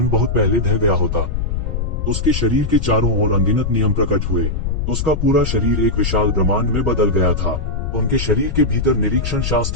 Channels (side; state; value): left; noise; rumble, 2 dB below the sound